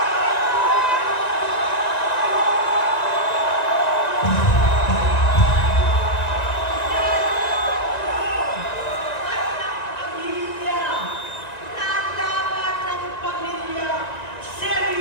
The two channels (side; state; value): right; late; 1.9 ms